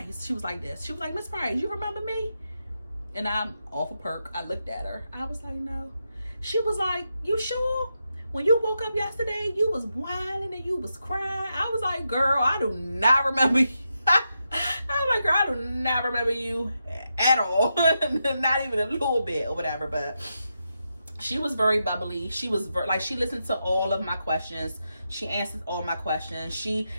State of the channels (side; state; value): both; inverted; correlation -0.86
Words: She was like this. She was like, Miss Price, you remember me? and I'm off a perk. I looked at her. I was like, no. She was like, you sure? When you woke up yesterday, you was whining and you was crying. I was like, girl, I do not remember you. I was like, girl, I do not remember you at all. Not even a little bit or whatever. But she was very bubbly. She was she listened to all of my questions. She answered all my questions. She,